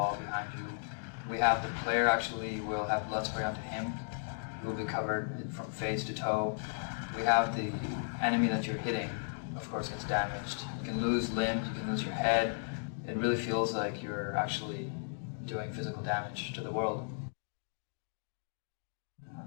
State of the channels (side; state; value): right; silent; digital silence